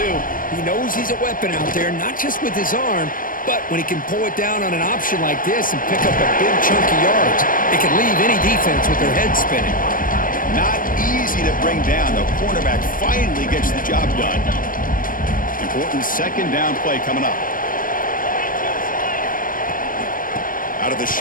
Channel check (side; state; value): right; late; 0.40 ms